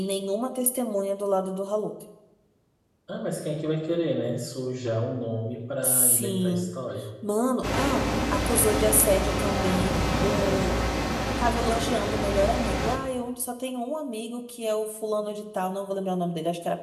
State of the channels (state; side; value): identical; both; correlation 1.00